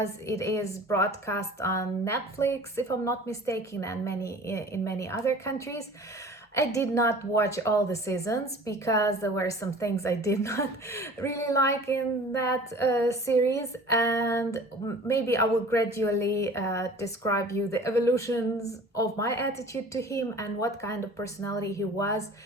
it is broadcast on Netflix, if I'm not mistaken, and in many other countries. I did not watch all the seasons because there were some things I did not really like in that series, and maybe I will gradually describe you the evolutions of my attitude to him and what kind of personality he was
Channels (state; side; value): normal; both; correlation 0.44